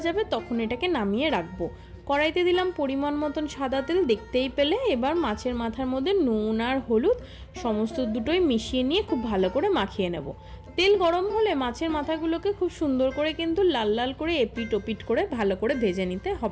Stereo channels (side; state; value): both; identical; correlation 1.00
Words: যাবে তখন এটাকে নামিয়ে রাখবো। কড়াইতে দিলাম পরিমাণ মতন সাদা তেল, দেখতেই পেলে। এবার মাছের মাথার মধ্যে নুন আর হলুদ সমস্ত দুটোই মিশিয়ে নিয়ে খুব ভালো করে মাখিয়ে নেব। তেল গরম হলে মাছের মাথাগুলোকে খুব সুন্দর করে কিন্তু লাল লাল করে এপিট ওপিট করে ভালো করে ভেজে নিতে